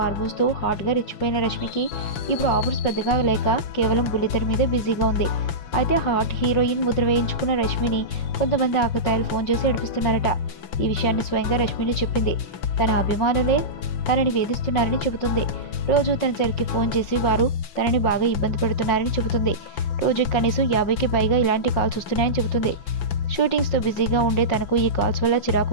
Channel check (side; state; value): right; late; 5.9 ms